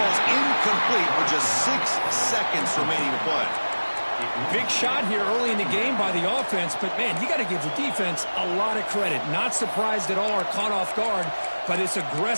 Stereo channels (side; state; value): both; inverted; correlation -1.00